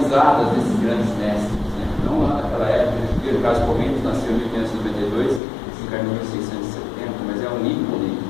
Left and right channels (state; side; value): drops out; right; at 5.4 s